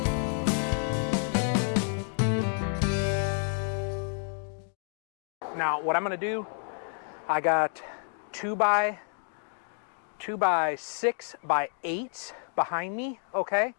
Now, what I'm gonna do, I got 2 by 6 by 8 behind me, okay? I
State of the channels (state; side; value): silent; right; 58 dB below the other